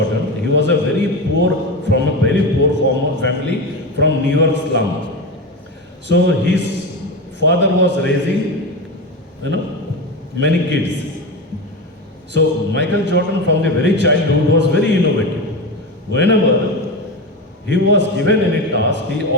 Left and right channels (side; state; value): both; normal; correlation 0.20